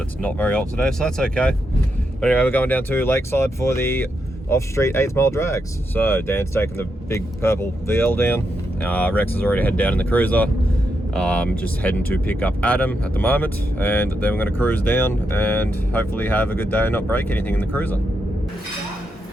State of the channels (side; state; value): both; normal; correlation 0.83